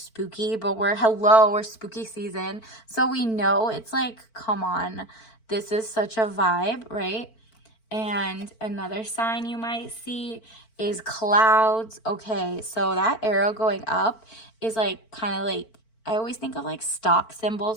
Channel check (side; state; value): right; late; 4.5 ms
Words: but we're spooky season. So we know it's like, come on. This is such a vibe, right? And another sign you might see is clouds. Okay, so that arrow going up is like kind of like, I always think of like stock